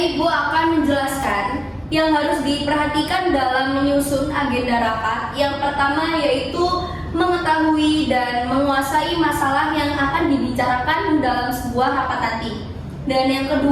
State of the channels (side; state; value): both; identical; correlation 1.00